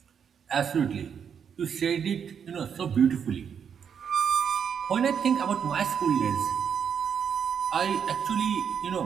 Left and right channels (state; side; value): quieter; left; 7.5 dB